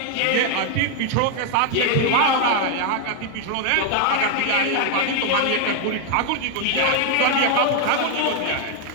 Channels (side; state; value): both; different; correlation 0.00